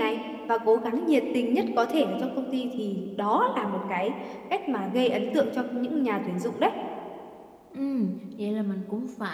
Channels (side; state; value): both; identical; correlation 1.00